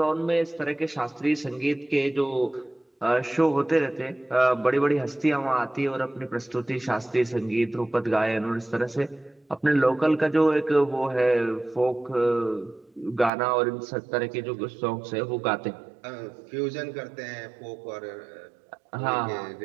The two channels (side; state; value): left; drops out; at 13.3 s